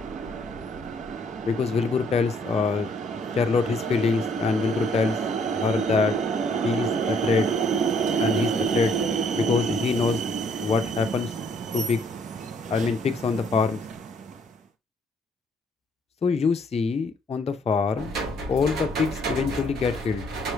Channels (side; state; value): both; normal; correlation 0.65